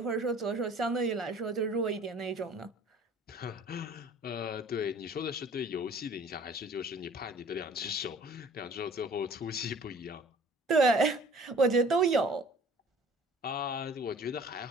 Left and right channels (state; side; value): normal; both; correlation 0.50